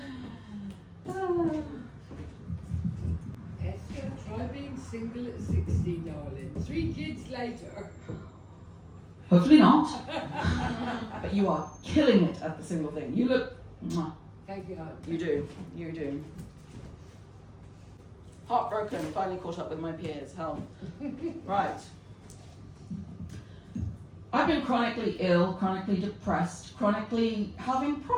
Esther, try being single at 60, darling. 3 kids later. Hopefully not. But you are killing it at the single thing. You look... Mwah. Thank you, hon. You do. You do. Heartbroken, finally caught up with my peers. Hell. Right. I've been chronically ill, chronically depressed, chronically having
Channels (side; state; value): both; identical; correlation 1.00